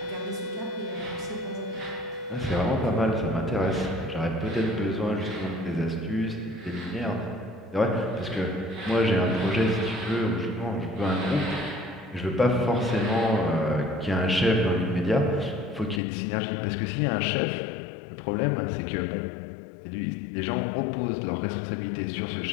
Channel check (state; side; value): drops out; right; at 16.0 s